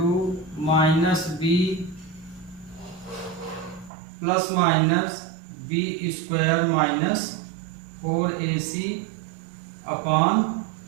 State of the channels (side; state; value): left; drops out; at 3.9 s